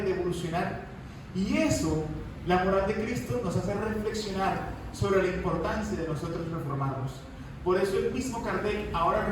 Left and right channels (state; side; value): identical; both; correlation 1.00